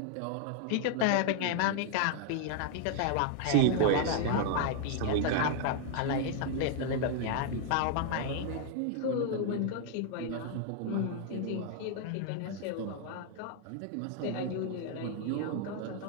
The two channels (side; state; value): both; different; correlation 0.00